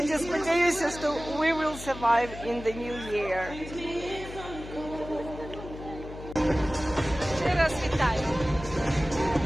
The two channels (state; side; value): noise; left; hum, 12 dB below the sound